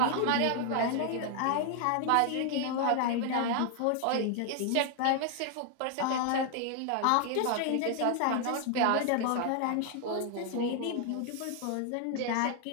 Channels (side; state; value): both; different; correlation 0.00